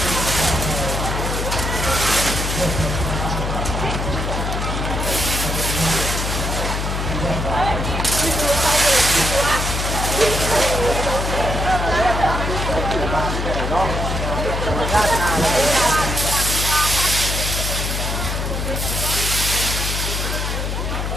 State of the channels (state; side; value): noise; left; hum, 2 dB below the sound